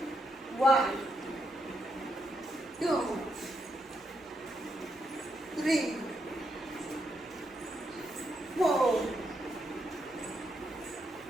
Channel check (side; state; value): both; normal; correlation 0.80